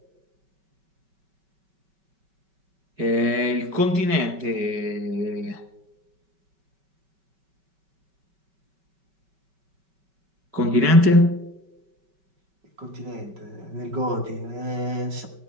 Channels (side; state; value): left; late; 5.2 ms